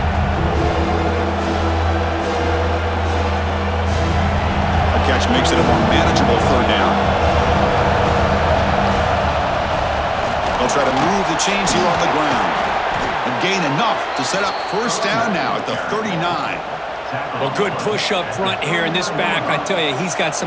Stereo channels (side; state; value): both; identical; correlation 1.00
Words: A catch makes it a more manageable 3rd down. They'll try to move the chains here on the ground and gain enough to set up 1st down now at the 39. Well, good push up front here in this back. I tell you, he's got